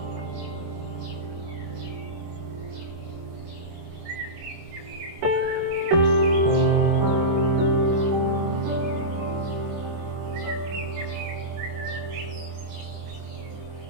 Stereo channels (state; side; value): late; left; 24 ms